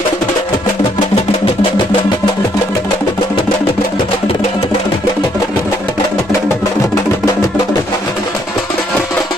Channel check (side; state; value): both; normal; correlation 0.70